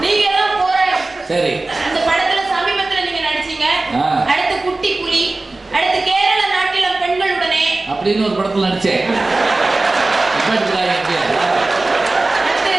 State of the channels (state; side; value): quieter; left; 3.1 dB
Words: நீங்க எல்லாம் போராடி. சரி. அந்த படத்துல சமீபத்துல நீங்க நடிச்சீங்க. அடுத்து குட்டி புலி, அடுத்து கேரள நாட்டில பெண்களுடனே அப்படின்னு ஒரு படத்துல நடிச்சேன். அடுத்து